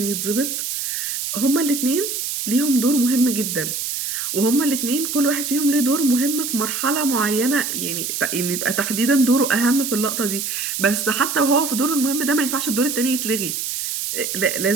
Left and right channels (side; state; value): right; noise; hiss, 3 dB below the sound